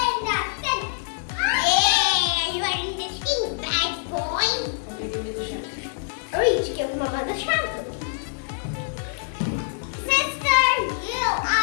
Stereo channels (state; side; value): silent; right; 62 dB below the other